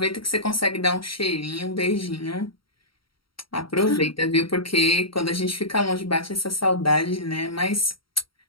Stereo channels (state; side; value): late; right; 0.74 ms